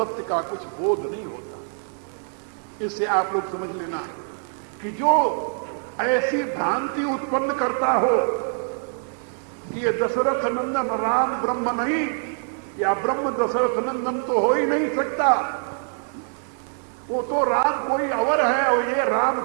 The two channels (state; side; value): silent; left; 57 dB below the other